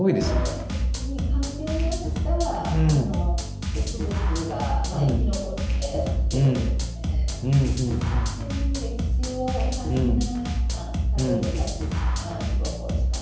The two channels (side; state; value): both; identical; correlation 1.00